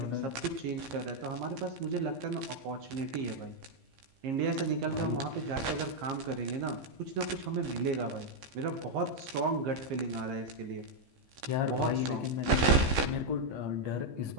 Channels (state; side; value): late; left; 15 ms